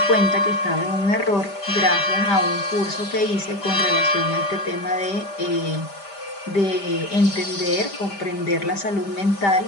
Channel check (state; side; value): late; right; 5.1 ms